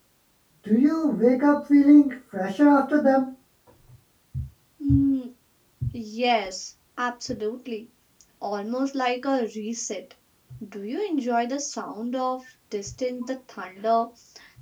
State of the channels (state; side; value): identical; both; correlation 1.00